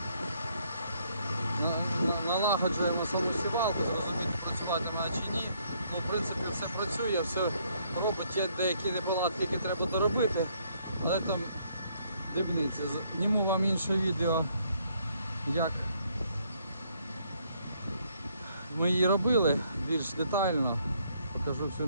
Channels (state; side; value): inverted; both; correlation -0.69